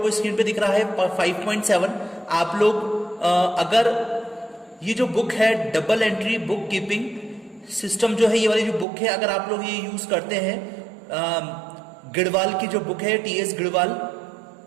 स्क्रीन पर दिख रहा है 5.7। आप लोग अगर ये जो बुक है double entry book keeping system जो है, ये वाली जो बुक है, अगर आप लोग ये यूज करते हैं, गिढ़वाल की जो बुक है टीएस गिढ़वाल,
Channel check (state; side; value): drops out; left; at 8.8 s